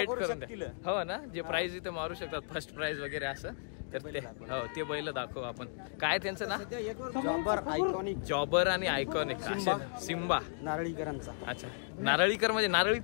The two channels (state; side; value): silent; right; digital silence